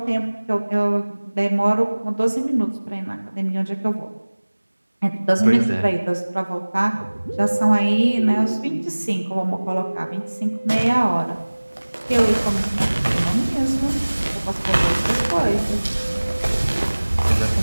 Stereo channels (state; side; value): inverted; both; correlation -1.00